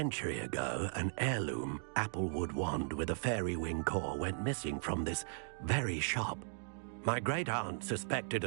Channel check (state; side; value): silent; left; digital silence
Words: ago, an heirloom applewood wand with a fairy wing core went missing from this very shop. My great-aunt suspected